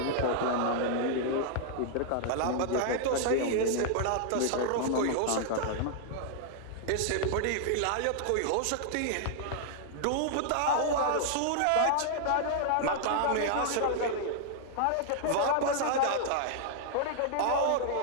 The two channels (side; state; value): both; different; correlation -0.01